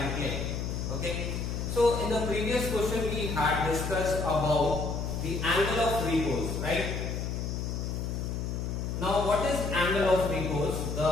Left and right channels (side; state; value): left; noise; hum, 3 dB below the sound